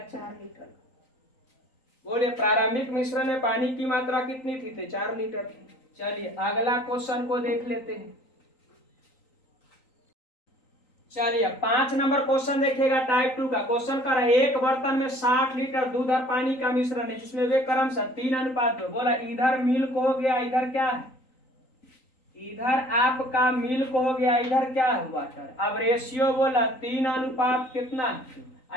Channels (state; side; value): late; right; 3.9 ms